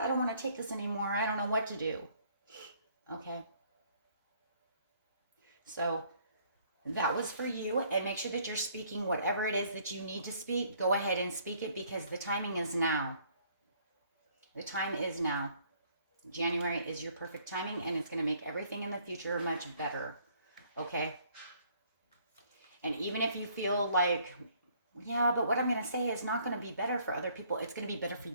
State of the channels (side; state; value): both; inverted; correlation -0.62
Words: don't want to take this anymore. I don't know what to do. Okay. So that was for you. And make sure that you're speaking whatever it is that you need to speak. Go ahead and speak it because the timing is now. The time is now. January is your perfect timing and it's going to make everything in the future much better. Okay. And even if you feel like, yeah, but what I'm going to say is not going to be better for other people. It's going to be better for